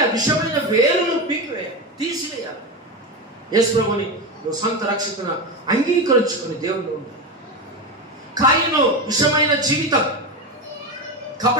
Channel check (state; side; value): normal; both; correlation 0.17